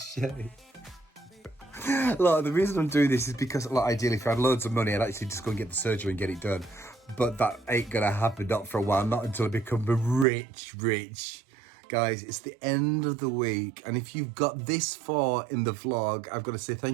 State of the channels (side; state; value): left; drops out; at 10.2 s